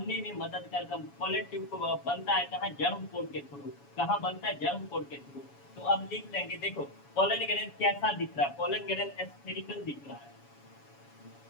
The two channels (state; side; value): late; right; 7.1 ms